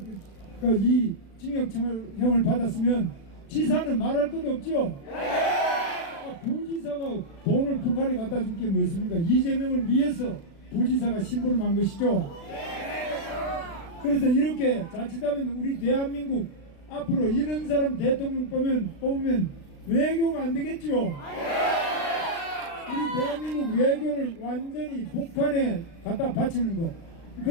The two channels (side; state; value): right; late; 36 ms